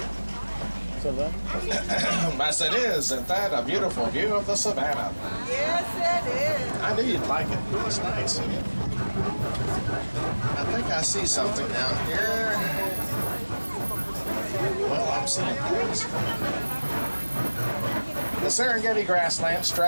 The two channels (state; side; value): inverted; both; correlation -1.00